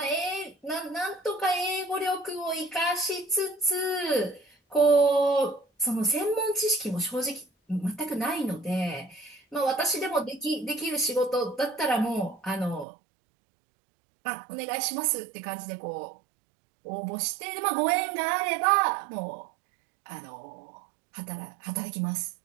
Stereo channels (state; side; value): drops out; left; at 12.9 s